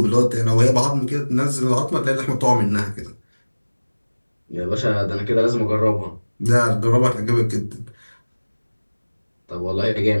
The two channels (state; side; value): inverted; both; correlation -1.00